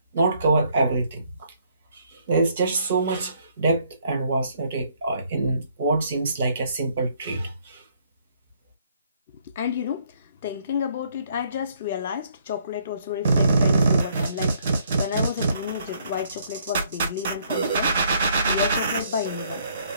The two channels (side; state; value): both; inverted; correlation -0.66